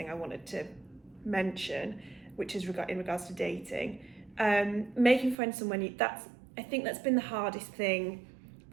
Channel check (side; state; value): left; drops out; at 5.4 s